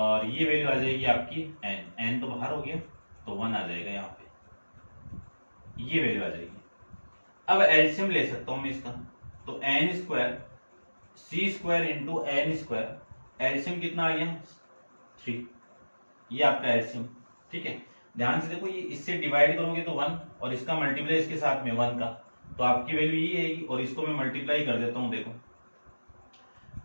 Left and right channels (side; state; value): both; inverted; correlation -1.00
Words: ये वैल्यू आ जाएगी आपकी n तो बाहर हो गया, तो 1 आ जाएगा यहाँ पे। ये वैल्यू आ जाएगी। अब एलसीएम ले सकता हूं मैं इसका, तो N square C square into N square, LCM कितना आ गया 3, ये आपका एलसीएम। ठीक है, ध्यान से देखो, ये इससे डिवाइड करोगे तो 1 और इसका मल्टीप्लाई इसके साथ में 1 का, तो आपकी वैल्यू ये आएगी। और इसको मैं मल्टीप्लाई कर देता हूं, देखो